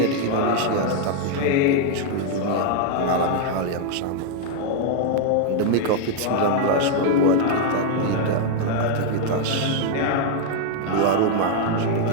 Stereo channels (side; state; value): both; different; correlation 0.00